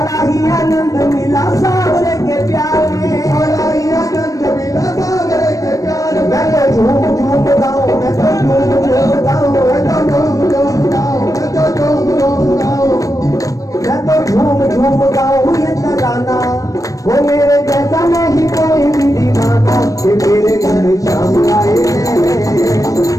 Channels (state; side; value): late; right; 0.16 ms